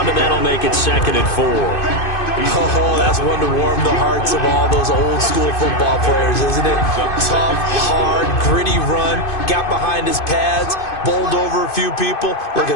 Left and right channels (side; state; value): right; late; 2.5 ms